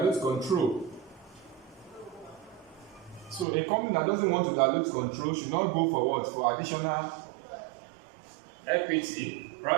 control. So a company that doesn't want to dilute control should not go for what? For additional equity.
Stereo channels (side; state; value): left; drops out; at 3.5 s